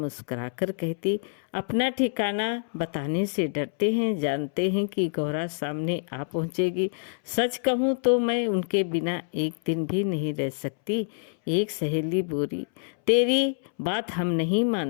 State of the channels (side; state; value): right; silent; 60 dB below the other